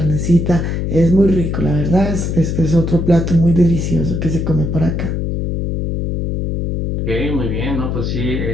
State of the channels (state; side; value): noise; left; hum, 2 dB below the sound